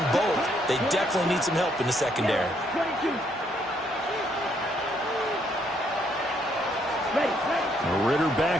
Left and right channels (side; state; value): both; normal; correlation 0.71